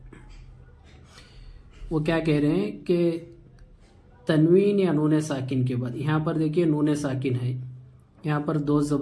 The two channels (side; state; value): both; identical; correlation 1.00